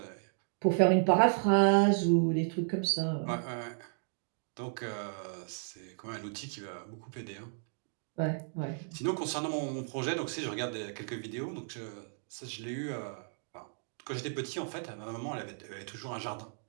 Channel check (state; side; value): silent; left; digital silence